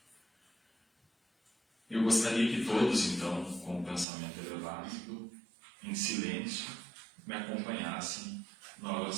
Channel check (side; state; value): left; drops out; at 4.0 s